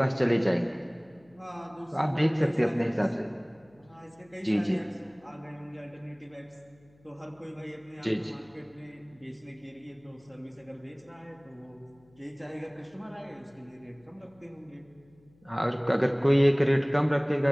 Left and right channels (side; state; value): left; noise; hum, 30 dB below the sound